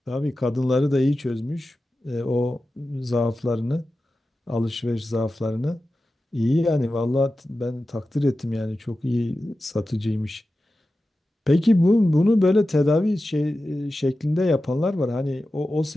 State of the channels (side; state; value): both; normal; correlation 0.93